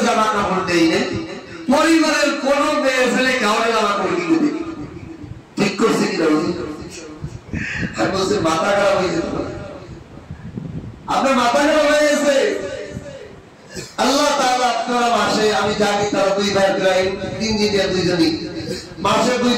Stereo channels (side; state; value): both; identical; correlation 1.00